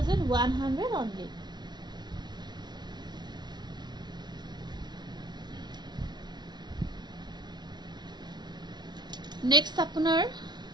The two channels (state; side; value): late; left; 0.20 ms